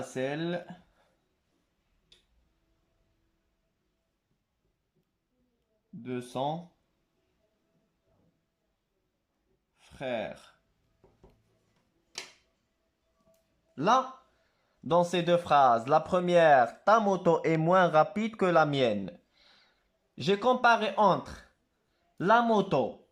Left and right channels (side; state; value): both; identical; correlation 1.00